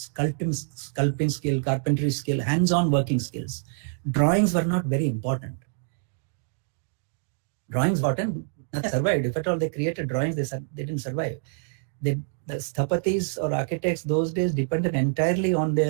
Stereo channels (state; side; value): silent; left; digital silence